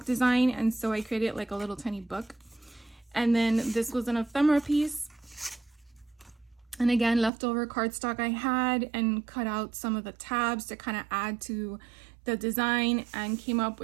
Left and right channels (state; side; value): drops out; left; at 7.3 s